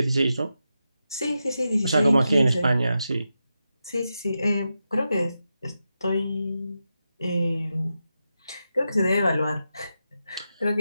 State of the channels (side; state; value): both; inverted; correlation -0.89